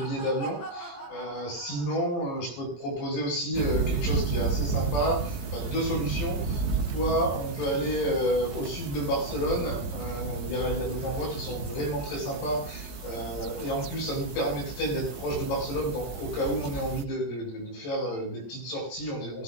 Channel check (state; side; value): late; right; 20 ms